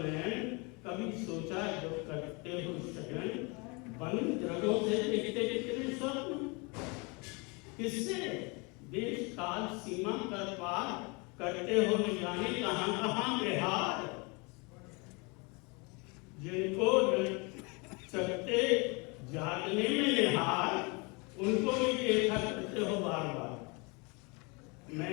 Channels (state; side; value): quieter; right; 29.6 dB